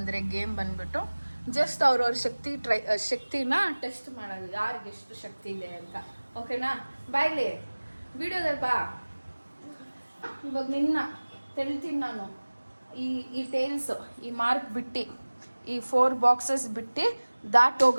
ಗೇಮ್ ಬಂದ್ಬಿಟ್ಟು ಜಸ್ಟ್ ಅವ್ರವ್ರ ಶಕ್ತಿನ ಟೆಸ್ಟ್ ಮಾಡೋದು, ಯಾರಿಗೆ ಎಷ್ಟು ಶಕ್ತಿ ಇದೆ ಅಂತ. ಓಕೆನಾ? ಬಾಯ್ಲಿ ವಿಡಿಯೋದಲ್ಲಿ ಬಾ. ಇವಾಗ ನಿನ್ನ ತೆಳಿತೀನಿ ನಾನು. ಈ ಟೇಲ್ಸ್ ಈ ಮಾರ್ಕ್ ಬಿಟ್ಟು ಈ 4 ಬಾಕ್ಸಸ್ ಬಿಟ್ಟು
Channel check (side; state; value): both; inverted; correlation -1.00